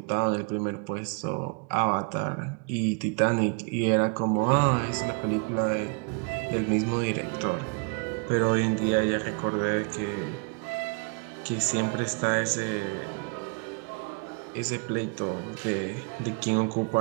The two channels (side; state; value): left; quieter; 34.6 dB